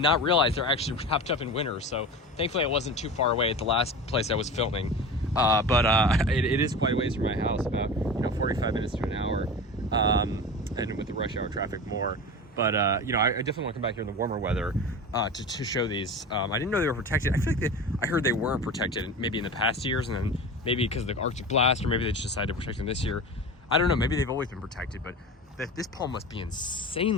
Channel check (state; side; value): normal; both; correlation 0.31